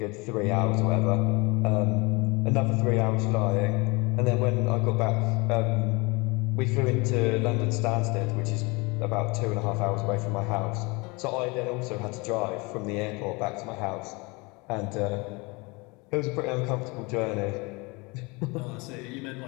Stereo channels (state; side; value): quieter; right; 26.9 dB